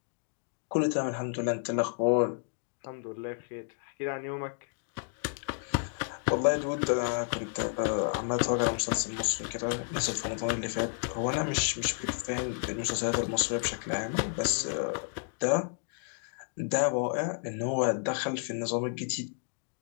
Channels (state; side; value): silent; right; 57 dB below the other